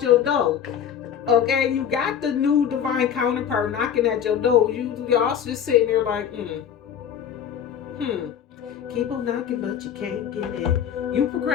door. Okay, you got the new divine counterpart knocking at your door. Y'all just sitting there like, keep on knocking, but you can't get in. You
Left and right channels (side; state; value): right; quieter; 8.8 dB